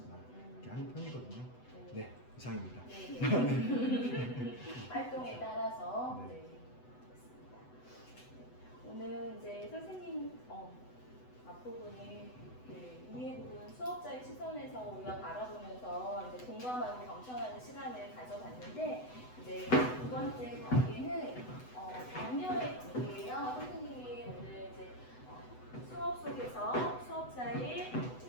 이렇게 하는 편이거든요. 네, 이상입니다. 활동에 따라서 네. 그렇습니다. 오늘 이제 선생님 앞부분이 이해 부분 수업자의 시선에서 우리가 바라보면서 이제 공감하고 경청하는 시간을 가져봤는데 이제 두 번째 단계는 격려의 단계예요. 선생님이 오늘 이제 수업 속에서 수업자의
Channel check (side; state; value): right; late; 8.0 ms